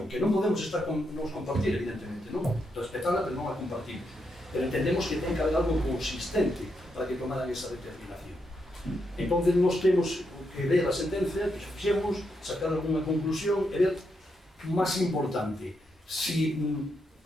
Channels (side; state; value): both; normal; correlation 0.81